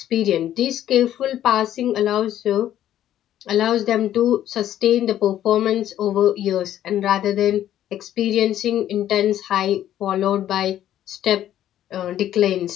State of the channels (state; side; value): quieter; right; 11.8 dB